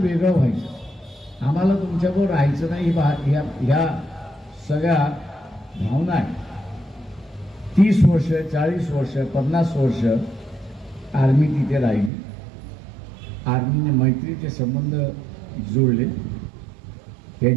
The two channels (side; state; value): left; drops out; at 12.1 s